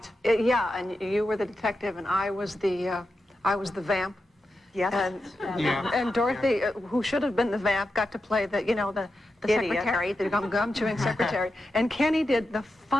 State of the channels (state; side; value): normal; both; correlation 0.89